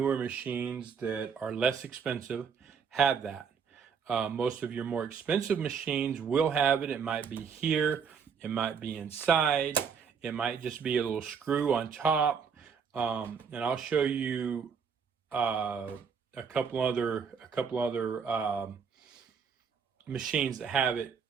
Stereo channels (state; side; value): quieter; left; 6.5 dB